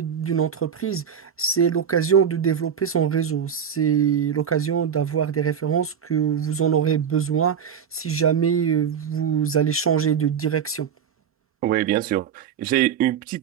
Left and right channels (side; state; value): left; quieter; 7.9 dB